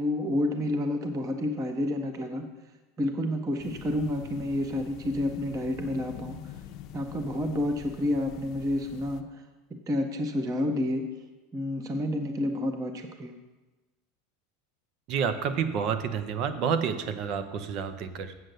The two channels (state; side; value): normal; both; correlation 0.65